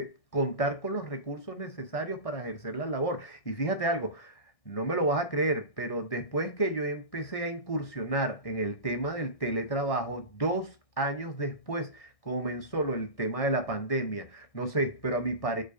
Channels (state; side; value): late; right; 1.6 ms